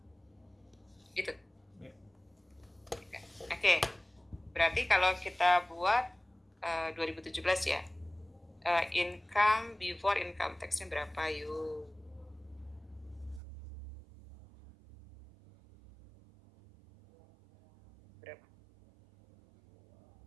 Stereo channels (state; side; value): drops out; left; at 13.4 s